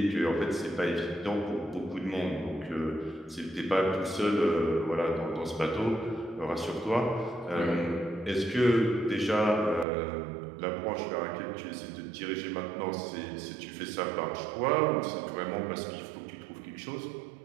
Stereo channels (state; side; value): drops out; left; at 9.9 s